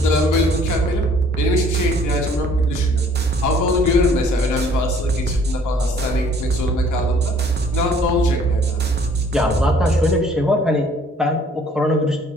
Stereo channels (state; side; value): normal; both; correlation 0.57